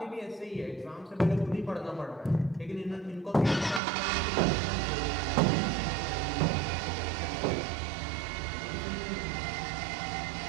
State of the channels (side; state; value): left; drops out; at 3.8 s